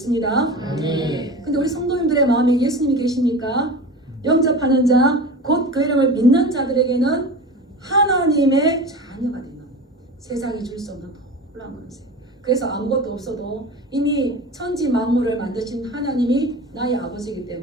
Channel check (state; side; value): normal; both; correlation 0.32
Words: 근데 우리 성도님들의 마음에 예수님이 계십니까? 영접하는 자, 곧 그 이름을 믿는 자들에게는 하나님의 자녀가 되는 세상이 줄 수 없는 놀라운 권세. 그래서 아무것도 없어도 이미 천지 만물을 만드신 하나님이 나의 아버지이기